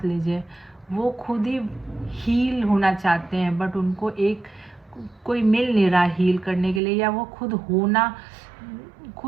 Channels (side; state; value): left; drops out; at 6.8 s